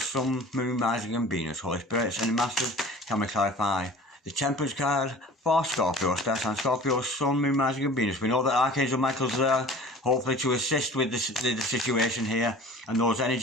Moon, Rising and Venus. Holy Spirit, sending masters. Can we clarify the Temperance card for Scorpio? Star sign, Scorpio, Sun, Moon, Rising and Venus. We know that Archangel Michael's there, hopefully to assist with the situation here. And those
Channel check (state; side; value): normal; both; correlation 0.44